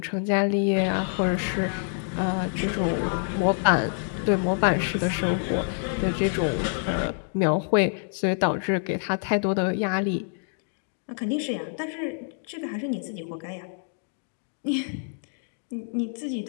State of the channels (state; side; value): silent; right; digital silence